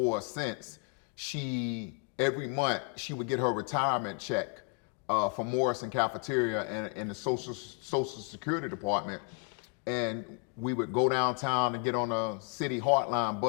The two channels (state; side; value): quieter; right; 37.4 dB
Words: or since. Every month she would get her retirement check from Morrison cafeteria and the Social Security department, and we would go downtown and get on a city Heartline